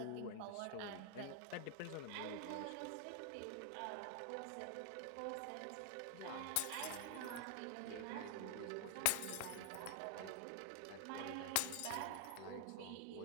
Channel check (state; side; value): different; both; correlation 0.00